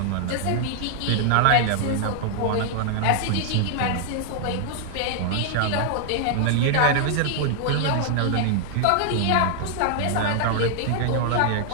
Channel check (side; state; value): both; different; correlation 0.00